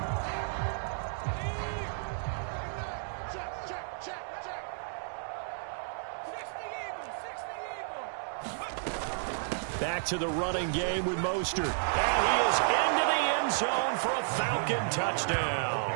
Back to the running game with Mostert. And he is into the end zone for a Falcon touchdown.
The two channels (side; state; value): left; silent; digital silence